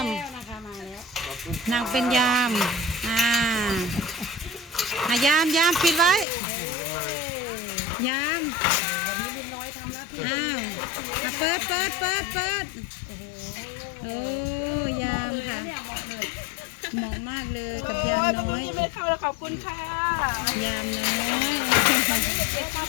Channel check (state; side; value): drops out; right; at 6.2 s